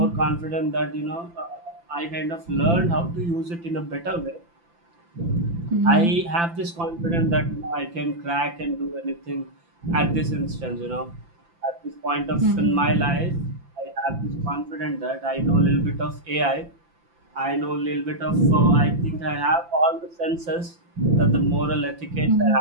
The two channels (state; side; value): late; left; 5.9 ms